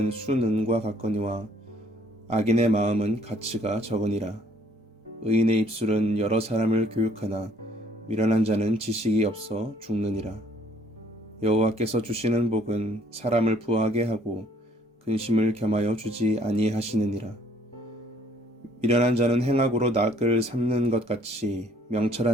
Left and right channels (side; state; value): both; normal; correlation 0.60